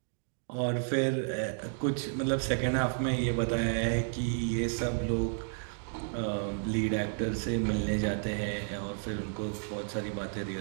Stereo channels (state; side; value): silent; left; digital silence